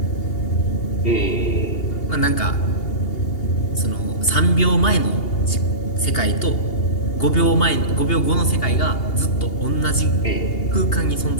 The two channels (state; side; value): late; right; 2.8 ms